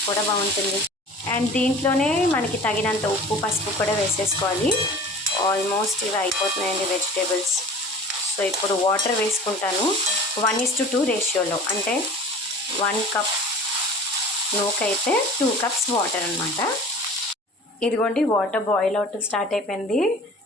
కూడా బాగుంటుంది. అండ్ దీంట్లోనే మనకి తగినంత ఉప్పు, పసుపు కూడా వేసేసుకోవాలి. ఆల్మోస్ట్ ఇవి అయిపోతున్నాయండి వెజిటేబుల్స్. సో ఇప్పుడు వాటర్ వేసుకుంటాను. 1:2 రేషియోలో, అంటే 1 కప్ నూకైతే 2 కప్స్ వాటర్ అనమాట. ఇదిగోండి, వాటర్ బాయిల్ అవుట్ స్టార్ట్ అయిపోయింది.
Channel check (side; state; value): both; normal; correlation 0.42